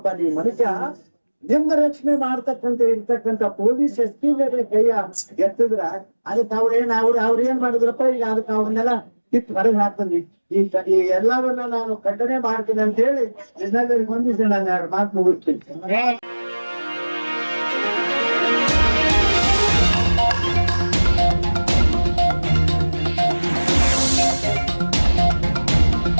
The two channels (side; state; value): both; inverted; correlation -1.00